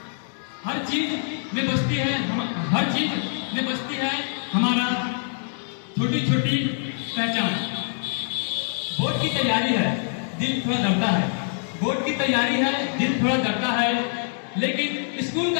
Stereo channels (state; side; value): silent; right; digital silence